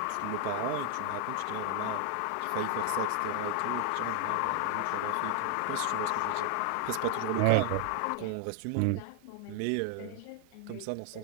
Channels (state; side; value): different; both; correlation 0.00